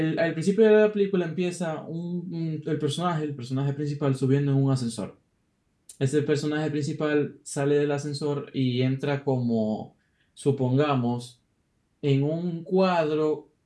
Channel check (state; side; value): identical; both; correlation 1.00